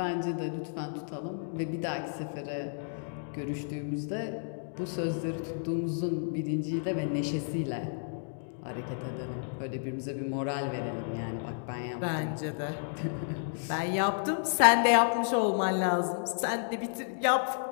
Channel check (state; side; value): silent; right; digital silence